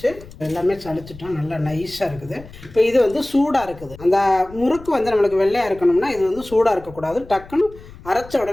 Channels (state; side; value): noise; left; rumble, 19 dB below the sound